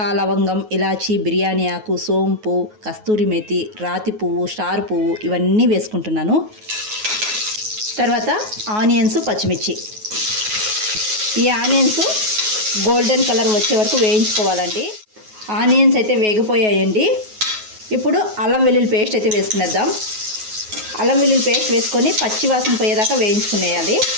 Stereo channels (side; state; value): left; late; 9.4 ms